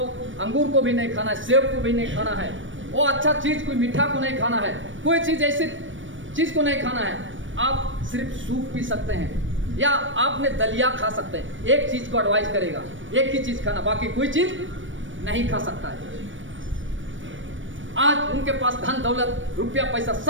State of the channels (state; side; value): late; left; 0.56 ms